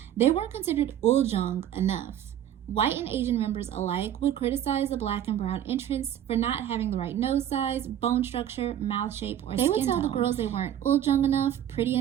They weren't considered uljung enough. White and Asian members alike would criticize the black and brown entrants for not having the right nose size, bone structure, mouth shape, or skin tone. They would tell the girls they weren't uljung enough, pretty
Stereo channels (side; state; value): left; quieter; 10.8 dB